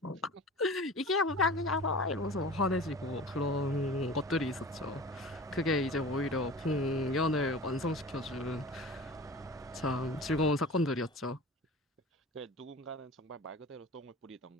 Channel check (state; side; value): normal; both; correlation 0.38